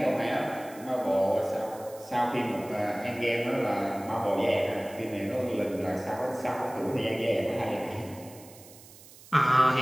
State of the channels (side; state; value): right; noise; hiss, 21 dB below the sound